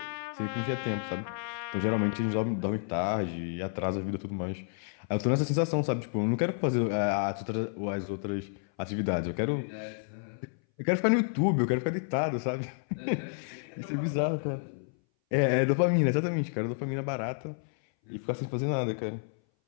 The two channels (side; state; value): right; silent; 58 dB below the other